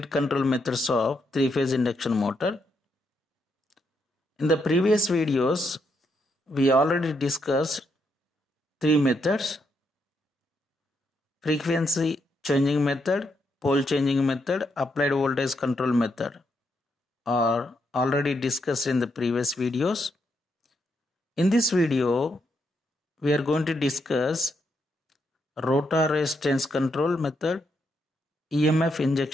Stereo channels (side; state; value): both; normal; correlation 0.79